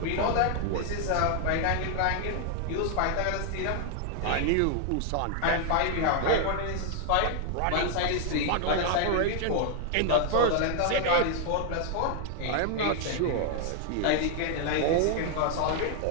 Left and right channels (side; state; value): both; different; correlation 0.00